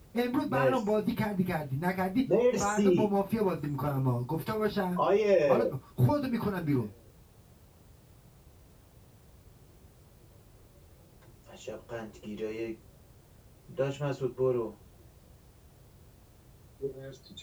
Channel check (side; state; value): both; identical; correlation 1.00